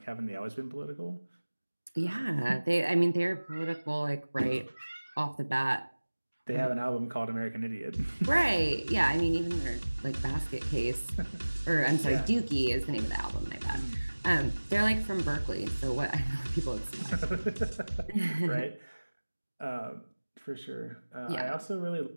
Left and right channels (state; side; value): inverted; both; correlation -1.00